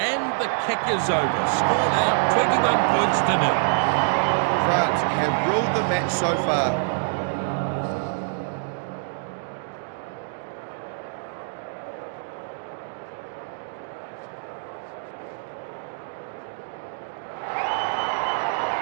the kick is over. Score now 21 points to 0. France have ruled the match so far.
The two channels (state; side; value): silent; left; digital silence